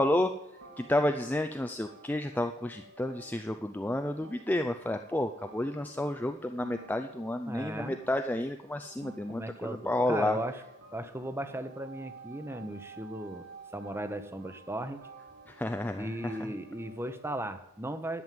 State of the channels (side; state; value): both; normal; correlation 0.82